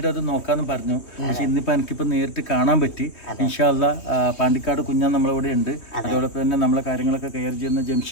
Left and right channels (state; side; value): late; right; 3.1 ms